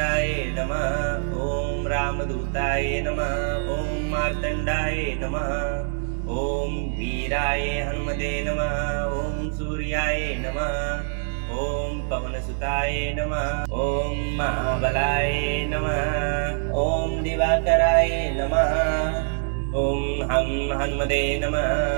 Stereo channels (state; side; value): silent; left; digital silence